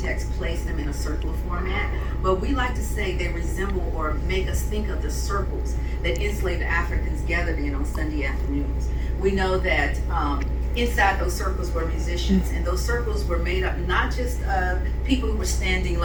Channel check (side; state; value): both; identical; correlation 1.00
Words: placed them in a circular format, but we like to say they resemble or make us think of the circles that enslaved Africans gathered in on Sunday afternoons. We know that inside those circles were musicians, and those circles were made up not just of people who were standing